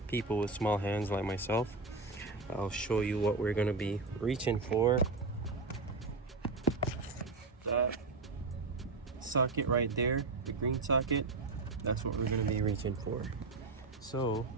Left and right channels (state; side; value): quieter; left; 3.7 dB